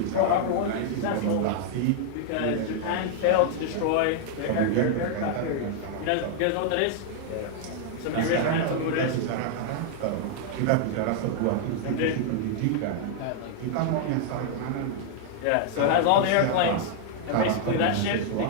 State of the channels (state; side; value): different; both; correlation -0.01